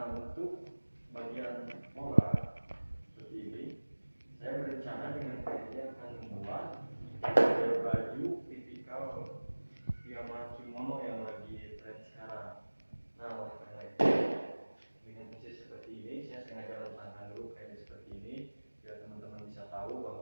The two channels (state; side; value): inverted; both; correlation -1.00